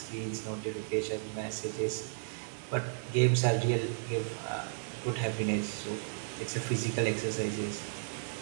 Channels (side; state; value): left; silent; digital silence